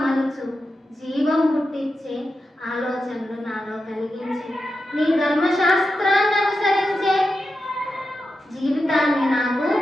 మలుచు. జీవం పుట్టించే ఆలోచనలు నాలో కలిగించి నీ ధర్మశాస్త్రాన్ని అనుసరించే జీవితాన్ని నాకు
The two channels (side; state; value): both; normal; correlation 0.89